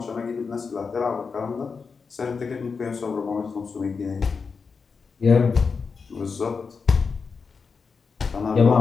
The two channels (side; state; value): right; quieter; 5.2 dB